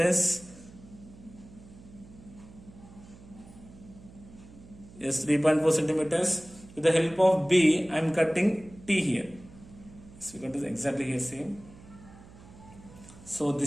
Yes, 3.4 centimeters. With the help of B, I am cutting T here. So we got this exactly here same. So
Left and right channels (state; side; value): noise; right; hum, 20 dB below the sound